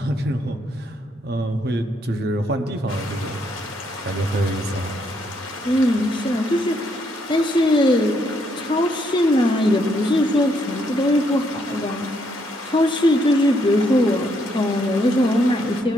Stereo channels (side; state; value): both; normal; correlation 0.73